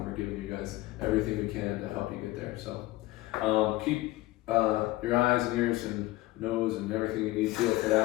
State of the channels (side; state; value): right; quieter; 18.2 dB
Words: we're giving you guys everything we can to help you get there. So keep your eyes and ears and nose and everything you need feel for